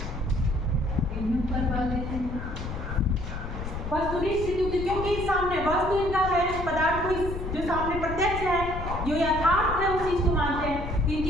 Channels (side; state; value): left; noise; rumble, 6 dB below the sound